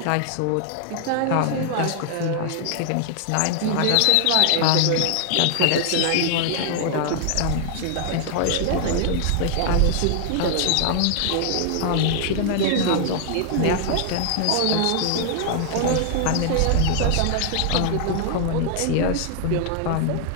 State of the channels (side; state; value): both; different; correlation -0.01